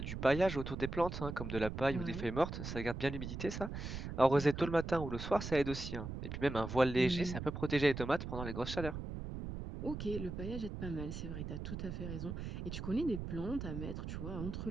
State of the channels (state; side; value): noise; right; rumble, 6 dB below the sound